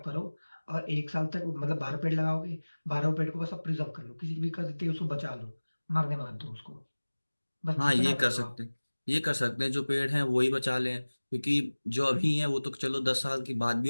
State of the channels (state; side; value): inverted; both; correlation -1.00